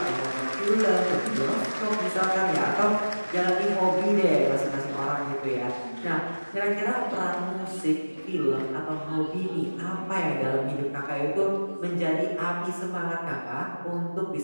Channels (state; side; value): inverted; both; correlation -1.00